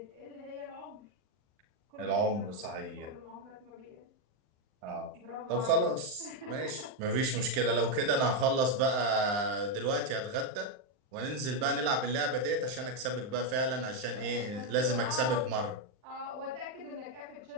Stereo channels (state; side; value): late; left; 39 ms